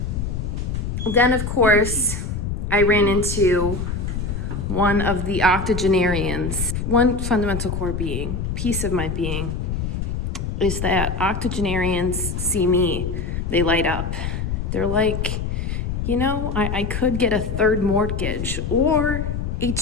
Then, of course, I ran into one of the octogenarians. One fundamental core being, piece of my being, is that octogenarians see me, they light up. They're like, you know, I could get a third mortgage or a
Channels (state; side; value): noise; left; rumble, 3 dB below the sound